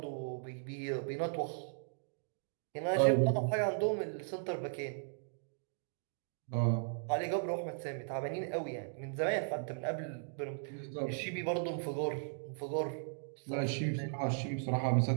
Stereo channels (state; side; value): silent; left; digital silence